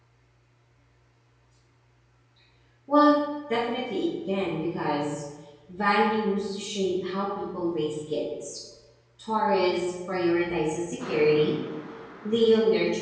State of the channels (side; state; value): both; identical; correlation 1.00